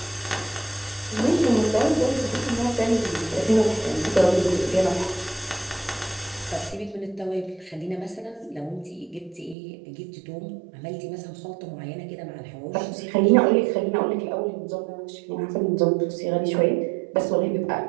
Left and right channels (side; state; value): left; drops out; at 9.6 s